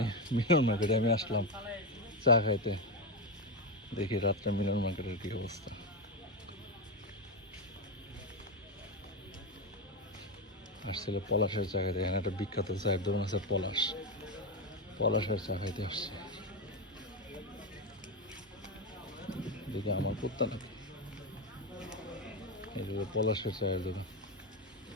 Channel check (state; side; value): normal; both; correlation 0.11